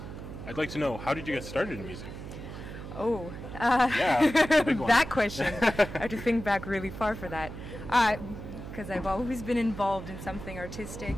I'd like to know, how did you get started in music? Oh, yeah, big one. That question. I have to think back really far for that. Because I've always been involved in something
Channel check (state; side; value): noise; right; hum, 10 dB below the sound